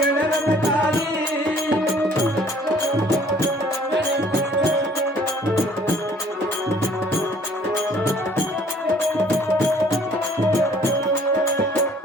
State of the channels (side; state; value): both; normal; correlation 0.57